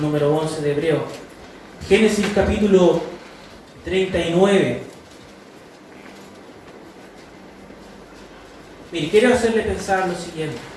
11 de Hebreos. Génesis capítulo 39. Mire, quiero hacerle pensar lo siguiente.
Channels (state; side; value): identical; both; correlation 1.00